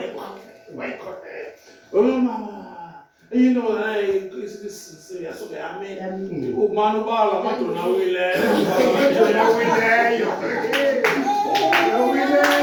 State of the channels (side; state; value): both; identical; correlation 1.00